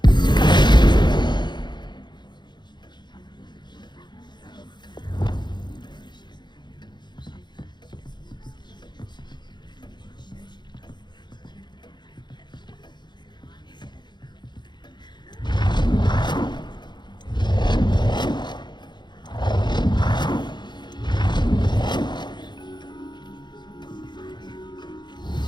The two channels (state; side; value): late; right; 0.21 ms